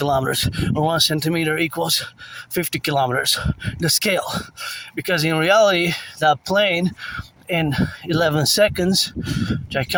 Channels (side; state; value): both; identical; correlation 1.00